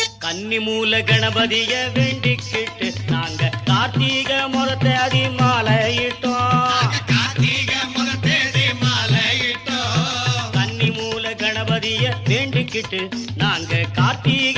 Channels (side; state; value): both; identical; correlation 1.00